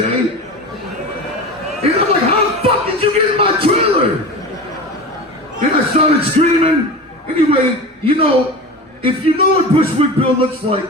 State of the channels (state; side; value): normal; both; correlation 0.30